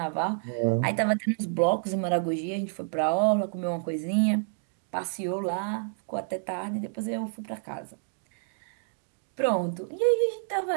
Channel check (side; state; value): left; silent; digital silence